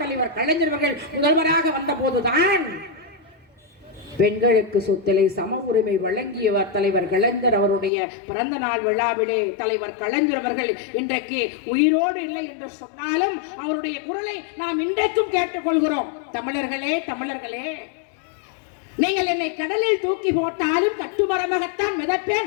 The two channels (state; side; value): drops out; right; at 7.9 s